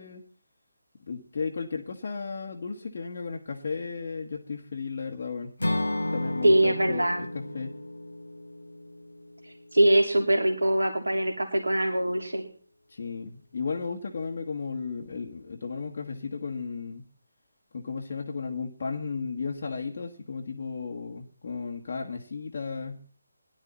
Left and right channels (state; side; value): inverted; both; correlation -0.94